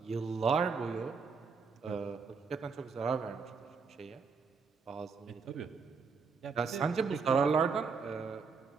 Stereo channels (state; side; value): quieter; left; 5.2 dB